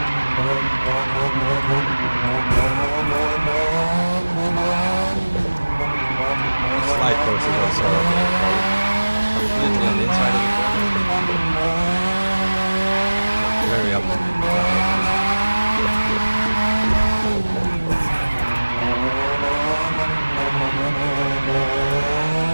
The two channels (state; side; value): inverted; both; correlation -1.00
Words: The slide course is also completely on the inside of the corner. Very up.